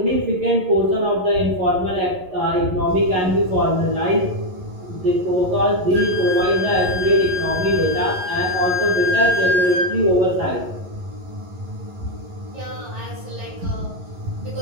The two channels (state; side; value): late; left; 11 ms